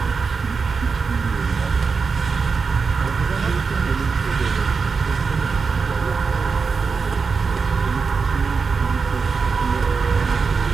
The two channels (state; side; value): quieter; left; 5.0 dB